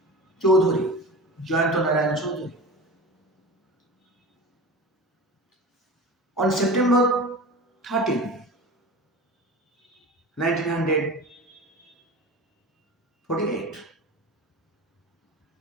Chaudhary, Jayanta Narayan Chaudhary. On September 13, 1948,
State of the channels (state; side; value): normal; both; correlation 0.33